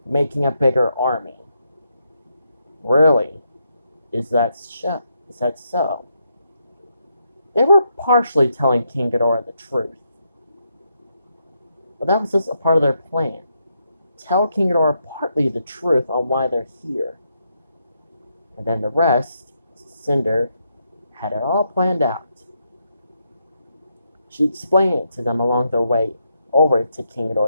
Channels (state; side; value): inverted; both; correlation -0.80